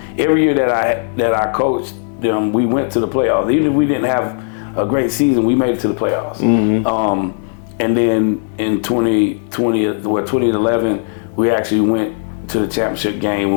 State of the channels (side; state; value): right; silent; 69 dB below the other